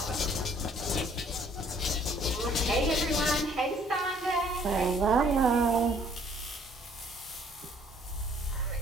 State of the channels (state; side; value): normal; both; correlation 0.60